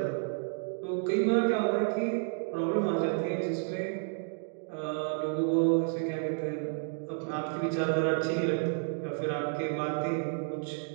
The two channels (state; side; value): silent; left; digital silence